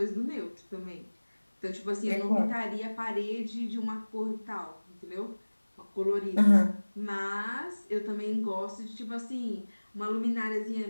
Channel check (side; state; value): both; inverted; correlation -1.00